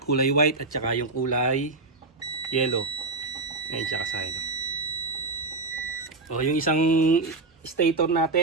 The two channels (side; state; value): left; quieter; 3.4 dB